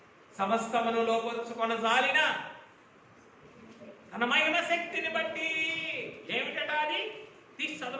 సమస్తమును లోపరుచుకొన జాలిన తన మహిమ శక్తిని బట్టి, ఏమిటట అది తీసి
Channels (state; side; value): identical; both; correlation 1.00